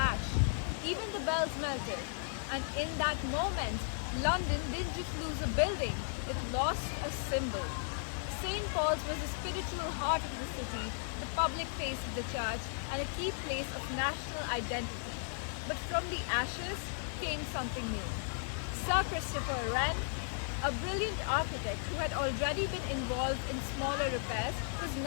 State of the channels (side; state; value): right; silent; digital silence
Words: Even the bells melted. And in that moment, London didn't just lose a building, it lost a symbol. St. Paul's was the spiritual heart of the city, the public face of the church, and a key place of national identity. But from the ashes came something new. Sir Christopher Wren, a brilliant architect who had already been involved in smaller repairs, was